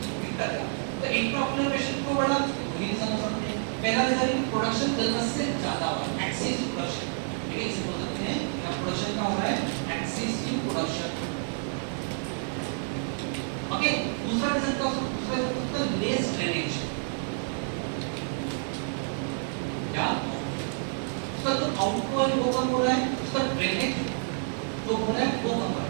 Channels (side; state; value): left; silent; digital silence